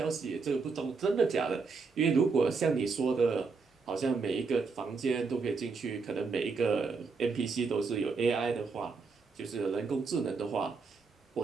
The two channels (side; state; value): left; quieter; 4.6 dB